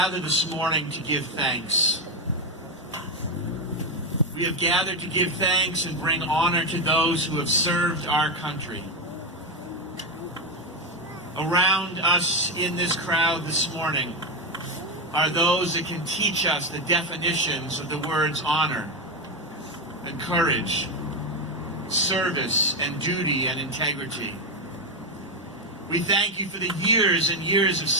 this morning to give thanks. We have gathered to give thanks and bring honor to those who have served our country. Around us in this crowd this morning are those that can teach us the definitions of the words honor and courage, service and duty and integrity. We thank you for the years and years of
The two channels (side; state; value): both; normal; correlation 0.08